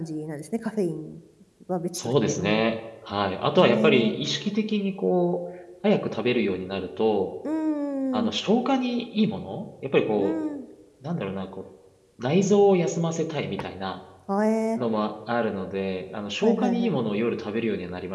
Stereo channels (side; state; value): both; identical; correlation 1.00